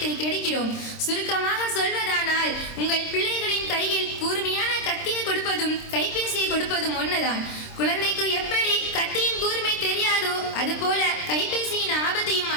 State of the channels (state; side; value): late; right; 26 ms